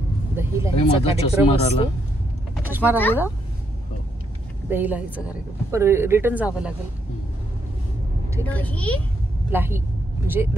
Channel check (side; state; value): both; normal; correlation 0.76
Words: दही लाहीचा कार्यक्रम असतो. चष्मा राहिला, दही लाहीचा कार्यक्रम, पण रिटर्न जावं लागेल. ठीक आहे, लाही म्हणजे